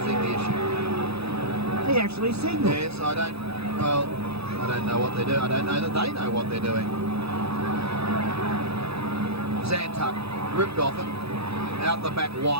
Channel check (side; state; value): left; late; 0.78 ms